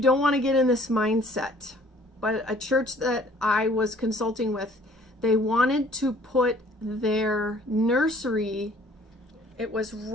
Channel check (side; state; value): both; normal; correlation 0.56